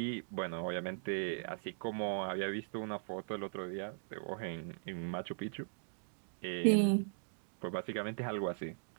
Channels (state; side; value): silent; left; digital silence